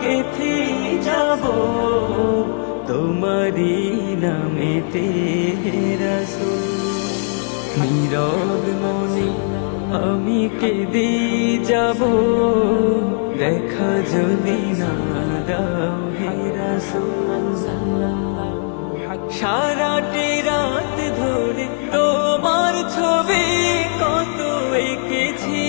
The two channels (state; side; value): silent; right; digital silence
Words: গেঁথে যাব, তোমারি নামেতে হে রাসূল। নীরব মনে আমি কেঁদে যাব, দেখা যদি না দাও হে রাসূল। সারাটি রাত ধরে তোমার ছবি কত এঁকেছি,